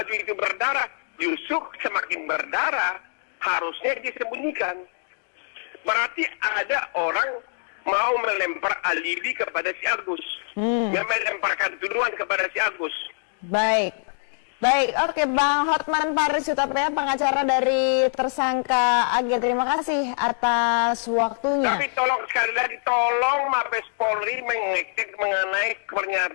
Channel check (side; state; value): right; silent; digital silence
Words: itu berdarah, justru semakin berdarah, harusnya disembunyikan. Berarti ada orang mau melempar alibi kepada si Agus. Melemparkan tuduhan kepada si Agus. Baik, oke, Bang Hotman Paris Hutapea, pengacara dari tersangka Ag. Terima kasih atas waktunya. Tapi tolong sekali lagi, tolong Mabes Polri mengecek mengenai